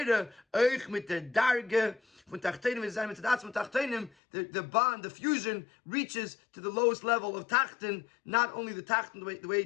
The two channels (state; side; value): drops out; right; at 4.1 s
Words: Eich mit der Darge, von Tachtenim is mit der Tachtenim, the bond, the fusion reaches to the lowest level of Tachten, not only the Tachten, the way